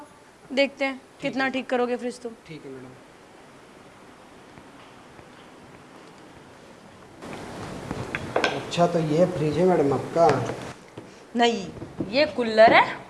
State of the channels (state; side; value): identical; both; correlation 1.00